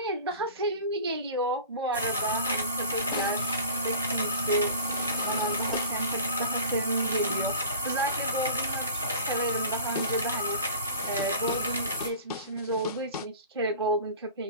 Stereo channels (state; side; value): inverted; both; correlation -0.40